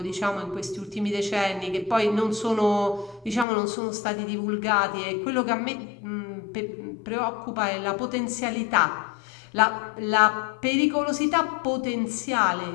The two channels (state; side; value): drops out; right; at 3.5 s